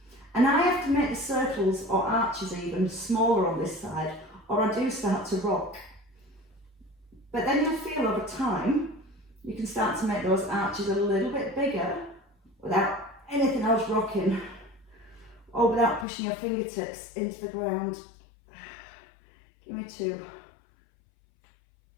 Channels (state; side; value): drops out; right; at 16.1 s